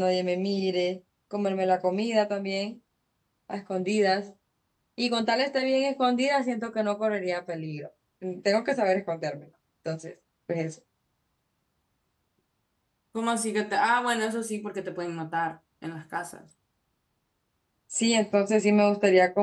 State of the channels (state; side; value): identical; both; correlation 1.00